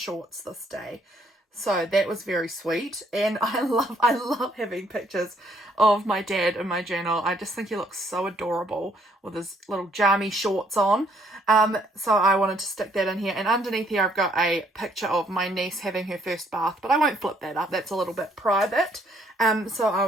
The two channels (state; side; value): normal; both; correlation 0.67